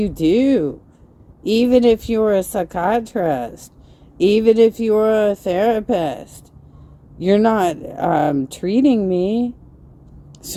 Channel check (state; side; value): identical; both; correlation 1.00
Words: do, even if you're a psychiatrist, even if you're a therapist, you're not treating me.